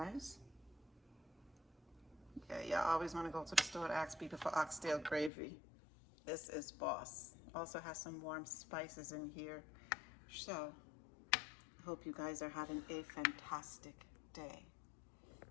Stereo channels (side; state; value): right; drops out; at 5.3 s